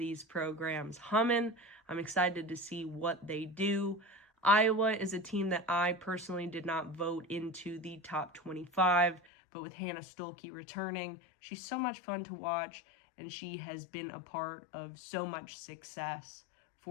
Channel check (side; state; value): right; drops out; at 9.2 s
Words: programs humming. I'm excited to see what they do. Iowa is a team that I personally did not vote into the top 25, but with Hannah Stolke returning, she's so much fun to watch, and she has been a part of so much success